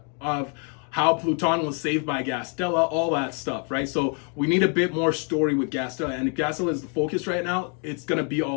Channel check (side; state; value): right; quieter; 39.9 dB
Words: of how Pluton was saved by Gastella, all that stuff, right? So we need a bit more story with Gastella, and if Gastella is the focus right now, it's gonna be